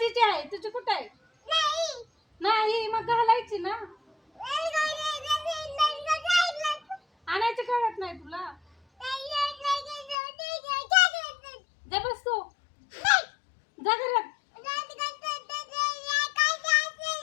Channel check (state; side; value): drops out; right; at 10.2 s